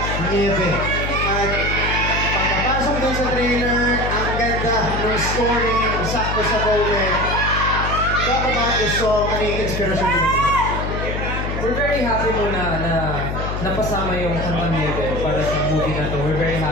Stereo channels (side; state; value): left; noise; hum, 3 dB below the sound